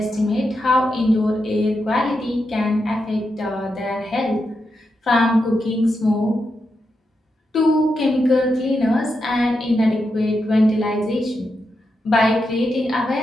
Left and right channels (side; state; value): both; normal; correlation 0.86